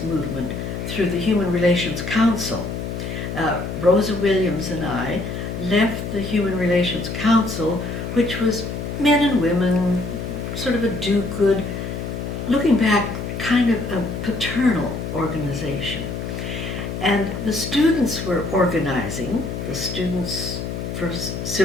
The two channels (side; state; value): left; noise; hum, 5 dB below the sound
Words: movement through the Human Relations Council. Rosa Williams and I left the Human Relations Council, which was men and women, sort of a do-good, looking back, kind of a paternal organization. And the students were organizing, the students for